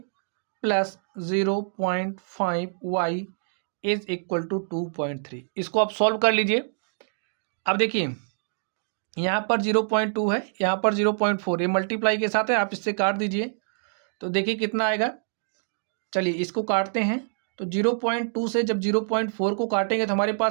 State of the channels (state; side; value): silent; left; digital silence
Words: plus 0.5 y is equal to 2.3। इसको आप सॉल्व कर लीजिए। अब देखिए यहाँ पर 0.2 है, यहाँ पर 0.4, ये मल्टीप्लाई के साथ है, आप इससे काट दीजिए तो देखिए कितना आएगा। चलिए इसको काटते हैं तो 0.2 से जब 0.4 को काटेंगे तो हमारे